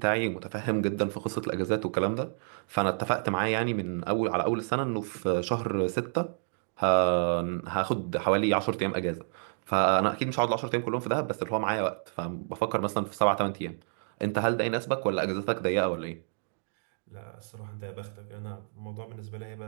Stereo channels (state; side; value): silent; left; digital silence